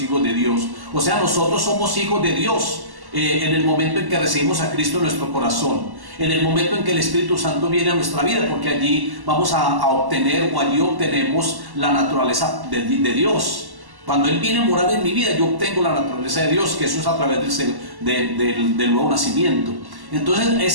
hijos de Dios. O sea, nosotros somos hijos de Dios en el momento en que recibimos a Cristo en nuestro corazón, en el momento en que el Espíritu Santo viene a nuestra vida, porque allí vamos a obtener, o allí obtenemos la naturaleza de Dios. Cuando Él viene a morar en mi vida, yo obtengo la naturaleza de Dios, que eso es a través del nuevo nacimiento. Entonces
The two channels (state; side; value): late; left; 1.1 ms